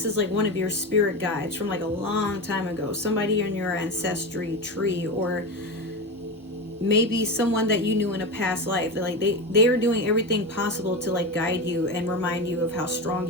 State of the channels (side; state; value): both; normal; correlation 0.20